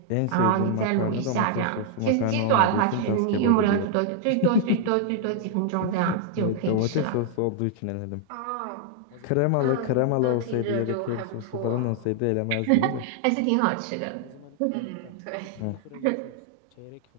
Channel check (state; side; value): different; both; correlation 0.00